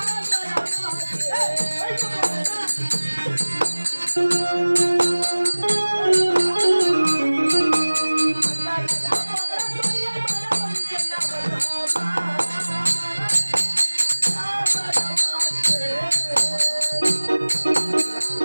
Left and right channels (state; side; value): inverted; both; correlation -1.00